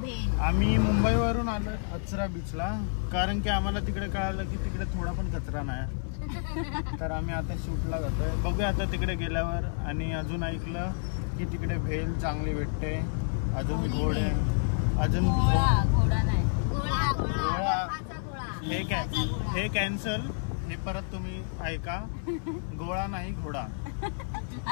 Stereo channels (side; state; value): right; silent; 58 dB below the other